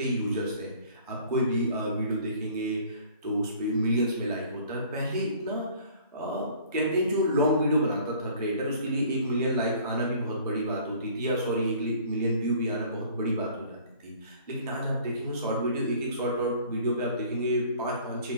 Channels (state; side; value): inverted; both; correlation -0.52